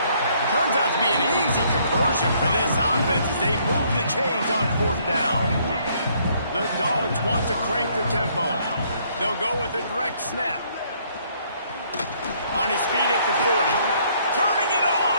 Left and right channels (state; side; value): inverted; both; correlation -0.66